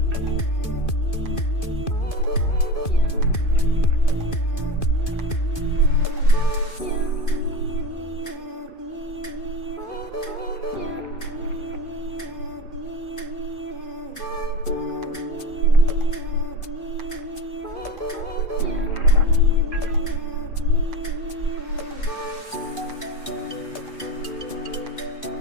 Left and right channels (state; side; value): late; right; 2.5 ms